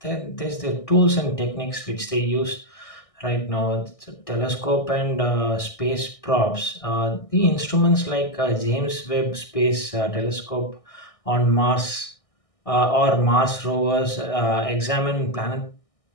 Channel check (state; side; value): late; right; 1.6 ms